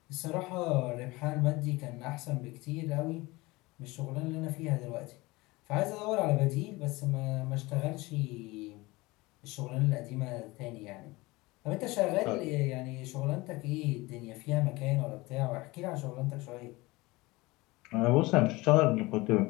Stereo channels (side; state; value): right; quieter; 22.0 dB